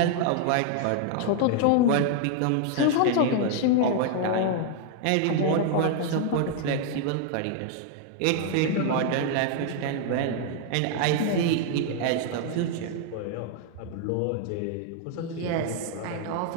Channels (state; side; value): different; both; correlation 0.00